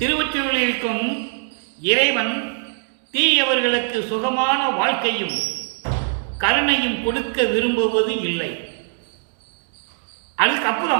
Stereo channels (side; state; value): left; silent; 58 dB below the other